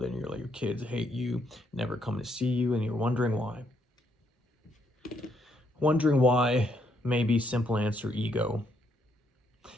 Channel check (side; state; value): both; normal; correlation 0.73